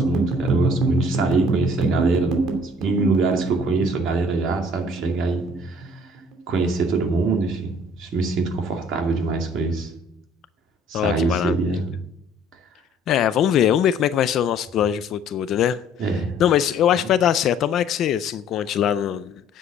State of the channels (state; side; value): normal; both; correlation 0.55